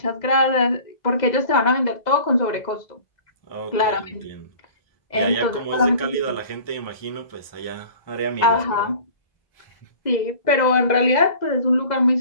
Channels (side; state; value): right; late; 2.0 ms